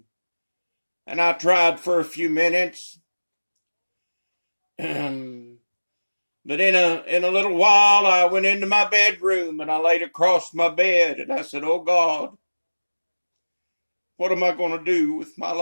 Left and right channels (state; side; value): inverted; both; correlation -1.00